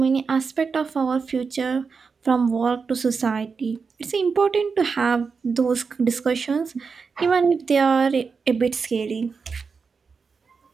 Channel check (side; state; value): left; quieter; 5.2 dB